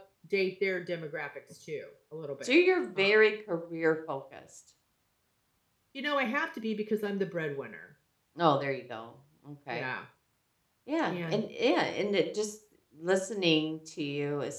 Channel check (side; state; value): both; identical; correlation 1.00